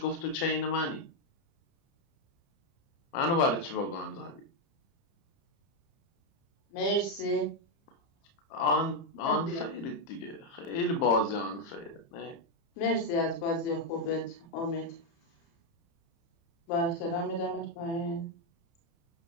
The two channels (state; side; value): late; right; 30 ms